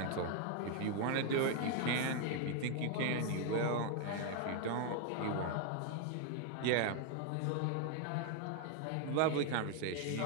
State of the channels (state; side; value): different; both; correlation 0.00